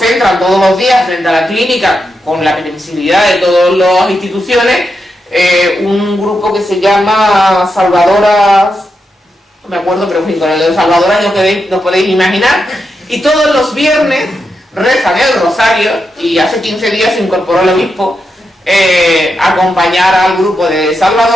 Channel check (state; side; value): normal; both; correlation 0.85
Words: todos los días frente a la clínica, con la permisibilidad de todas las instituciones, un grupo que se llama Salvadoras, no me acuerdo, pero en fin, con el de Salvadoras no podéis imaginar, y todos los viernes rezan el rosario, y hace 15 días se incorporó el obispo a acompañar al grupo de